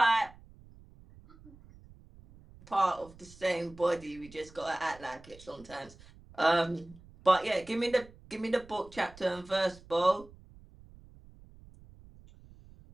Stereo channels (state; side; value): noise; right; rumble, 22 dB below the sound